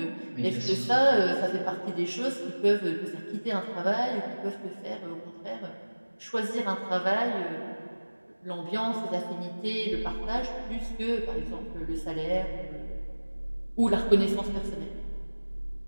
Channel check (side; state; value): both; inverted; correlation -1.00